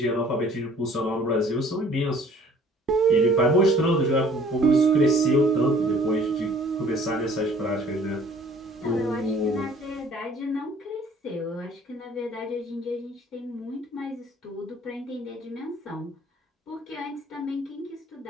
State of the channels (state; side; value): normal; both; correlation 0.54